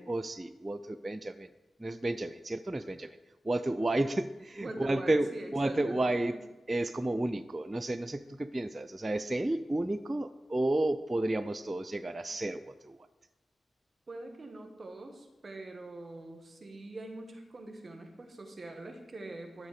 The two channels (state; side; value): normal; both; correlation 0.96